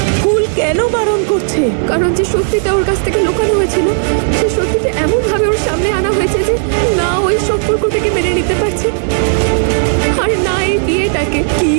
ফুল কেন বারণ করছে? কারণ যে সত্যিটা ওর কাছ থেকে লুকানো হয়েছিল, সেই সত্যিটা এমন ভাবে ওর সামনে আনা হয়েছে যে না ওই সম্পর্কটাকে মেনে নিতে পারছে, আর না এই বিয়েটাকে। কি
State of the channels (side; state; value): left; silent; digital silence